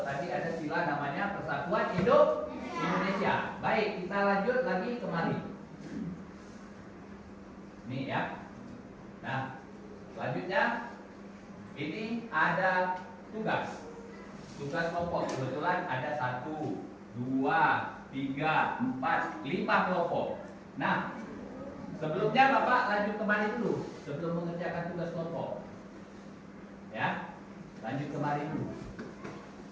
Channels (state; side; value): identical; both; correlation 1.00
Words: tadi ada sila namanya Persatuan Indonesia. Baik, kita lanjut lagi kemari. Nih ya. Nah, selanjutnya ini ada tugas kelompok. Kebetulan ada 1, 2, 3, 4, 5 kelompok. Nah, sebelumnya Bapak lanjut kembali dulu sebelum mengerjakan tugas kelompok. Ya, lanjut kembali dulu.